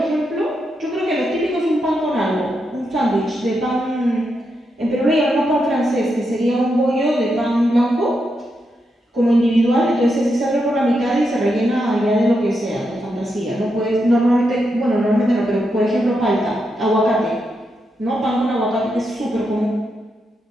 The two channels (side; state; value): both; normal; correlation 0.84